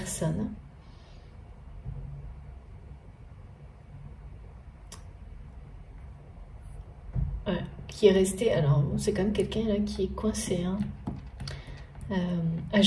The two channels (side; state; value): both; identical; correlation 1.00